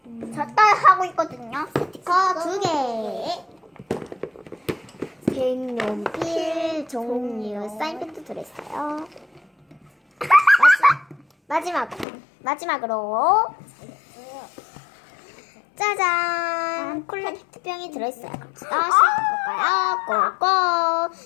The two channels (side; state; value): right; drops out; at 12.1 s